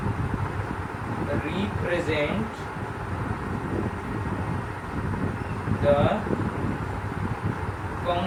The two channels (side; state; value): both; identical; correlation 1.00